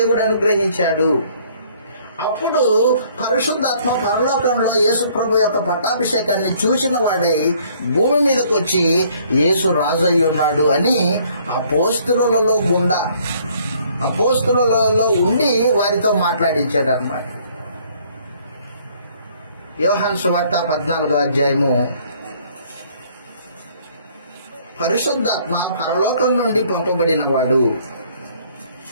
అనుగ్రహించాడు. అప్పుడు పరిశుద్ధాత్మ పరలోకంలో యేసు ప్రభు యొక్క పట్టాభిషేకాన్ని చూసిన వాడై భూమి మీదకి వచ్చి యేసు రాజు అయి ఉన్నాడు అని అపోస్తలులలో ఉండి వారితో మాట్లాడించాడు అన్నమాట. యోహాను సువార్త 14వ అధ్యాయము. పరిశుద్ధాత్మ పరలోకం నుండి పంపబడిన వాడు.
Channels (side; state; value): both; inverted; correlation -0.61